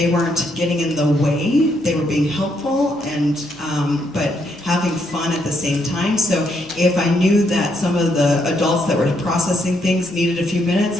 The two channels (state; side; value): normal; both; correlation 0.75